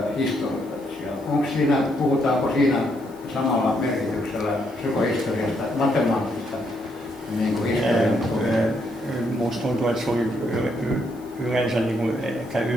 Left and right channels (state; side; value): noise; right; hiss, 27 dB below the sound